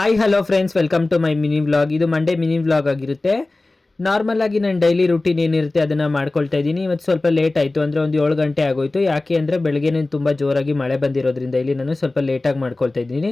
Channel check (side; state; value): right; quieter; 3.1 dB